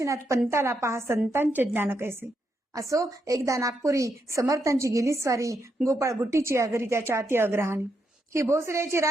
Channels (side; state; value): both; normal; correlation 0.81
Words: पंताला पहा संतांचे ज्ञान कैसे. असो एकदा नागपुरी समर्थांची गेली स्वारी, गोपाळ बुट्टीची अगरी त्याच्या अति अग्रहाने. ही भोसल्याची